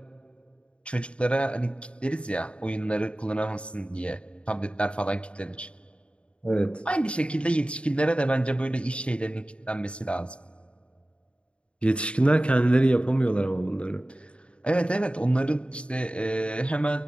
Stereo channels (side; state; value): right; late; 0.058 ms